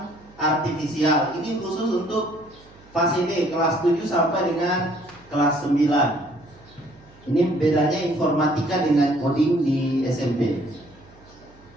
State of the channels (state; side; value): noise; right; hum, 26 dB below the sound